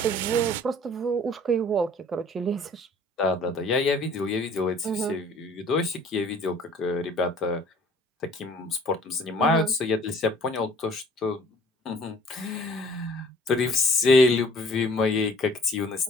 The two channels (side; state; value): both; normal; correlation 0.53